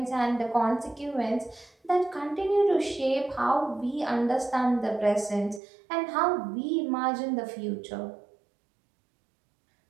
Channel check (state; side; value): drops out; left; at 5.6 s